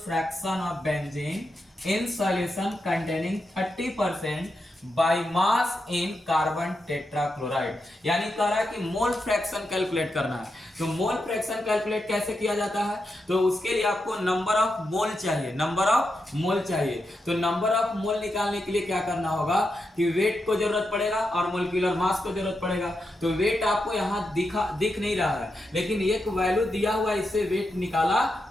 fraction of benzene in solution containing 30% by mass in carbon tetrachloride. यानी कह रहा है कि मोल फ्रैक्शन कैलकुलेट करना है। तो मोल फ्रैक्शन कैलकुलेट कैसे किया जाता है, तो उसके लिए आपको नंबर ऑफ मोल चाहिए, नंबर ऑफ मोल चाहिए। तो नंबर ऑफ मोल निकालने के लिए क्या करना होगा कि वेट को जरूरत पड़ेगा और मोलिक्यूलर मास को जरूरत पड़ेगा। तो वेट आपको यहाँ दिख नहीं रहा है, लेकिन एक वैल्यू दिया हुआ है, इससे वेट निकाला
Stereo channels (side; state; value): both; normal; correlation 0.86